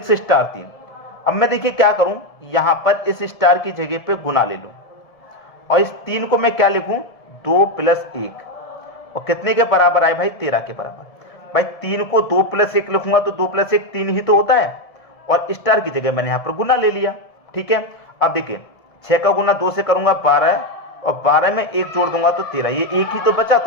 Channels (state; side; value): late; right; 1.7 ms